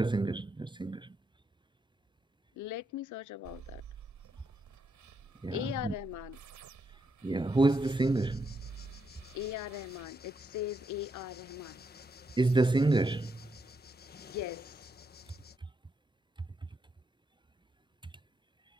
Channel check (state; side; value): normal; both; correlation 0.80